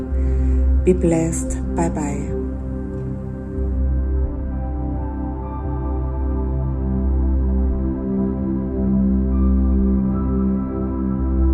Be blessed. Bye bye.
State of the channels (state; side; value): identical; both; correlation 1.00